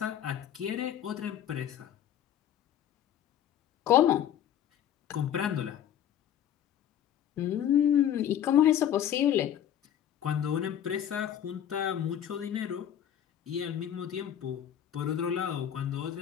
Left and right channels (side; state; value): right; quieter; 10.1 dB